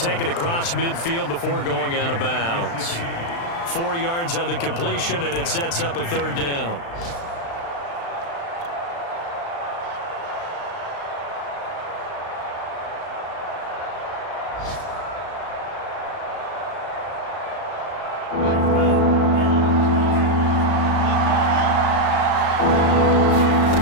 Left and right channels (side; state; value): right; late; 35 ms